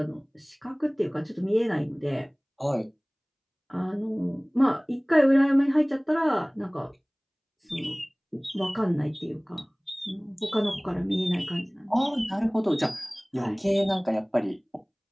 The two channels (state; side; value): identical; both; correlation 1.00